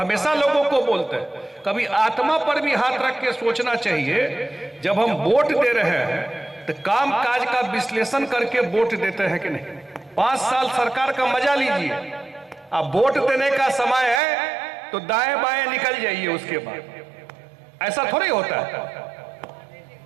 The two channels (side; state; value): left; drops out; at 14.2 s